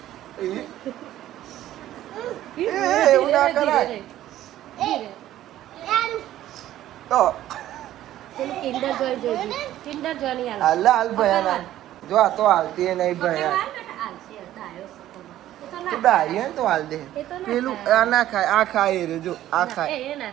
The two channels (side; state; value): left; quieter; 13.3 dB